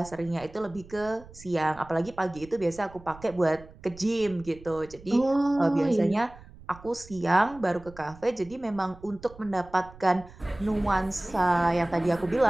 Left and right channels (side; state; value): right; noise; rumble, 20 dB below the sound